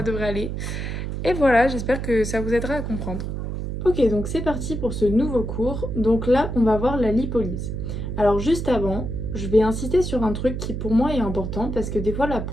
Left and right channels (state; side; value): noise; right; hum, 4 dB below the sound